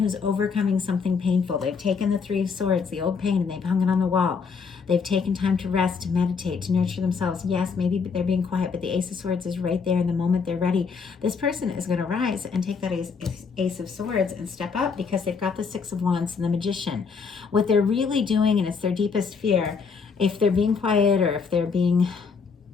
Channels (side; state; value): right; quieter; 5.4 dB